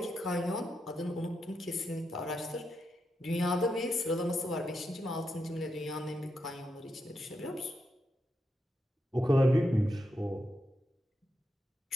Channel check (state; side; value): normal; both; correlation 0.84